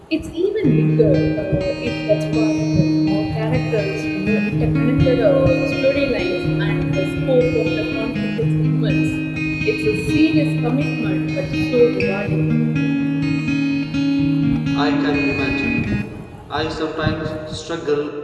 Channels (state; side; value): identical; both; correlation 1.00